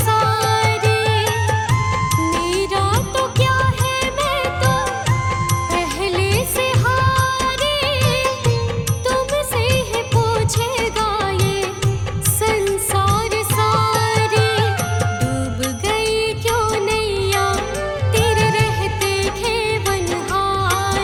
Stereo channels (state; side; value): identical; both; correlation 1.00